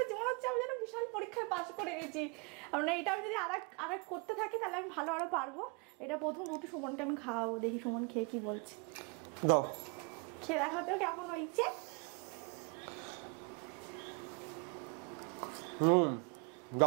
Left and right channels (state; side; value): quieter; left; 32.4 dB